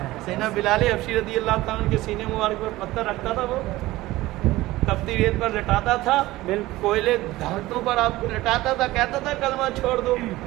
سینا بلال حبشی رضی اللہ تعالیٰ کے سینے مبارک پر پتھر رکھتا تھا، وہ تپتی ریت پر لٹاتا تھا، کوئلے دھاتوں پر آپ کو لٹاتا تھا، کہتا تھا کلمہ چھوڑ دو،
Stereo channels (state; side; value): quieter; left; 17.9 dB